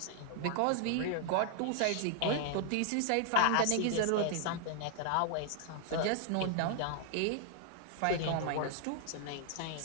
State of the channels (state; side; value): different; both; correlation 0.00